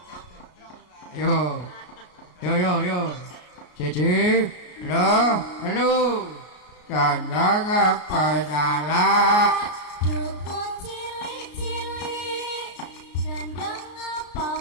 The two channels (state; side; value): late; right; 33 ms